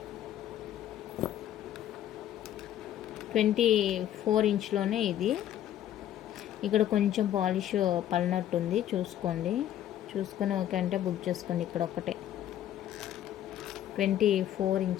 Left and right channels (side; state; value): right; quieter; 11.5 dB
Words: ట్వంటీ 24 ఇంచ్లోనే ఇది. ఇక్కడ కొంచెం పాలిష్ పడినట్టుంది, చూసుకోండి. చూసుకొని ఓకే అంటే బుక్ చేసుకోండి. ఇక్కడ ఒకటే 24